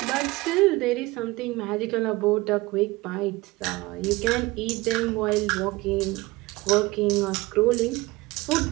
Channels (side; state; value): left; quieter; 21.2 dB